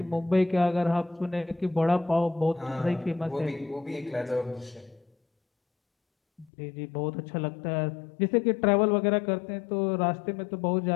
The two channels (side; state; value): right; drops out; at 6.5 s